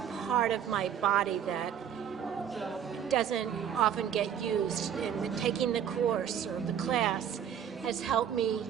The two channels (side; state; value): left; quieter; 8.9 dB